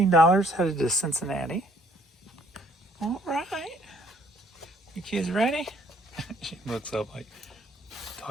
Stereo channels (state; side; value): normal; both; correlation 0.63